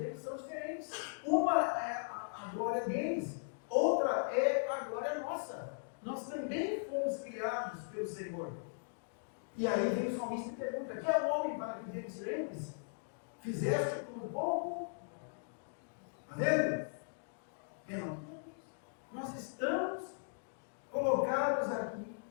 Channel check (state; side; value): silent; right; digital silence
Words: são diferentes. Uma é a glória deles, outra é a glória nossa. Nós também fomos criados pelo Senhor. E aí vem o salmista e pergunta, que é o homem para que te lembres? Fizeste com pouco? Está vendo? Não. Nós estamos colocados aqui